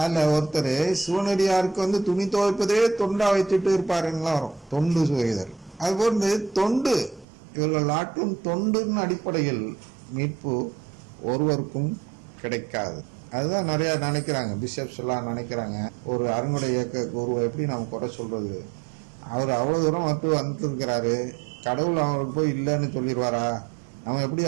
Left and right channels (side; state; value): left; drops out; at 7.2 s